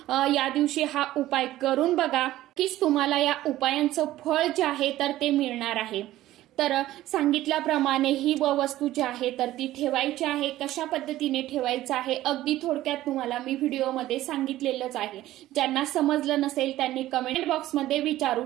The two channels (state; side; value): quieter; left; 15.0 dB